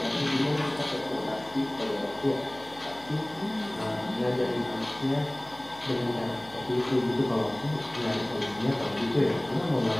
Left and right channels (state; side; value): noise; left; hum, 21 dB below the sound